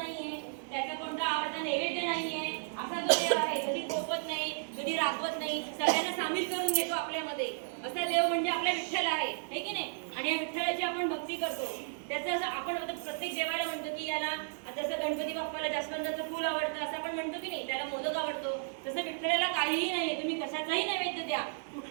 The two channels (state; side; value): silent; left; digital silence